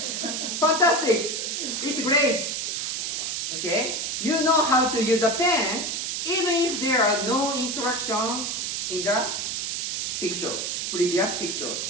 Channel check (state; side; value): noise; right; hiss, 2 dB below the sound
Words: fantastic. It's great. Okay, you know how to use a pen, even if there are no instructions in the picture, previous picture.